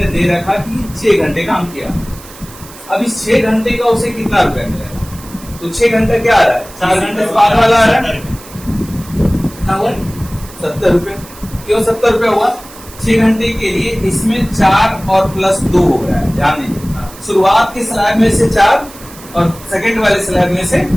दे रखा कि 6 घंटे काम किया। अब इस 6 घंटे का उसे कितना रुपया मिलेगा, तो 6 घंटा क्या आ रहा है, 4 घंटे से बाद वाला आ रहा है, कितना हुआ, 70 रुपये। क्यों 70 रुपये हुआ, 6 घंटे के लिए इसमें 4 और प्लस 2 हो रहा है, ध्यान दीजिए। शुरुआत के स्लैब में से 4 और सेकंड वाले स्लैब में से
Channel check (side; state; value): right; noise; hiss, 19 dB below the sound